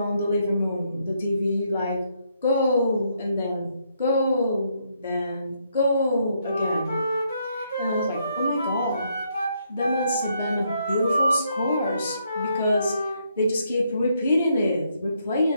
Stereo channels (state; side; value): inverted; both; correlation -0.74